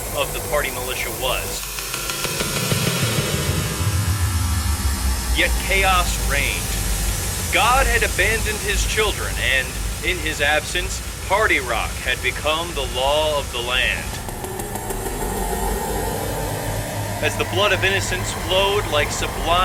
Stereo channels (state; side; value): identical; both; correlation 1.00